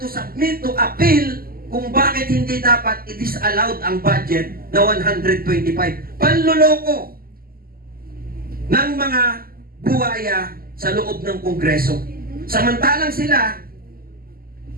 submit to appeal kung bakit hindi dapat i-disallowed ang budget na 125. Panloloko ng mga buwaya sa loob ng Kongreso. Samantalang sila,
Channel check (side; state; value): left; late; 0.42 ms